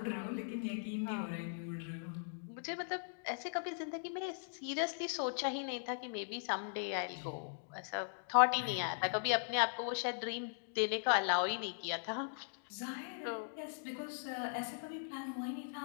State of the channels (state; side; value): silent; right; digital silence